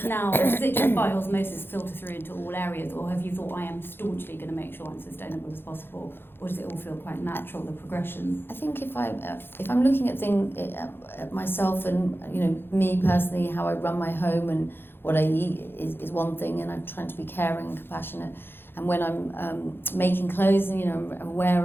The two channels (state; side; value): late; right; 0.10 ms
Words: now, does it just by osmosis filter through into all areas, or have you thought, I am staunchly going to make sure I'm sustainable as possible, or does it all feel quite natural, the progression? I think if I'm looking at things at myself, and you know, me personally, how I run my home and what I eat is one thing, and I'm trying to be caring and compassionate. And when I'm making clothes, and you know, I'm